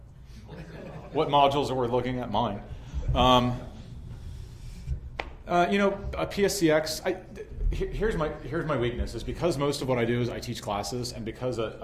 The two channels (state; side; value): identical; both; correlation 1.00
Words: What modules are we looking at? Mine. A PSCX. Here's my weakness is because most of what I do is I teach classes, and because